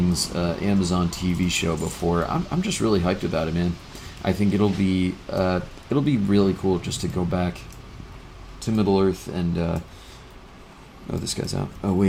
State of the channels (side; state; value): both; identical; correlation 1.00